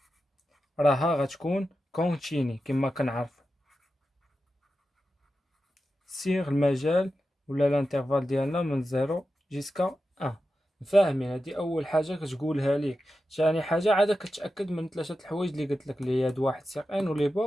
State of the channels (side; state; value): both; normal; correlation 0.91